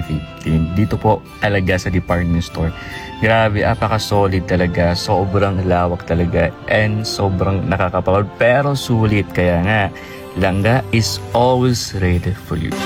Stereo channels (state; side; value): identical; both; correlation 1.00